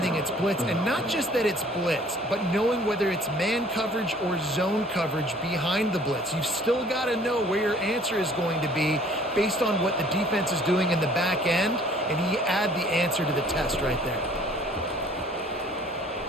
it's blitz, and not just that it's blitz, but knowing whether it's man coverage or zone coverage behind the blitz. You've still got to know where your answer is going to be based on what the defense is doing in the back end, and he add the answer to the test right there.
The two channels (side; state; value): both; normal; correlation 0.55